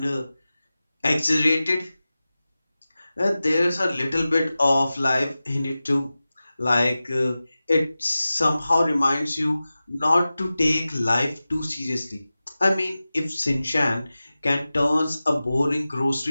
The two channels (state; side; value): inverted; both; correlation -0.96